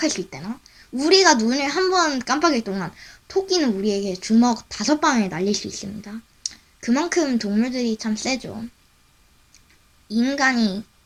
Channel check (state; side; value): identical; both; correlation 1.00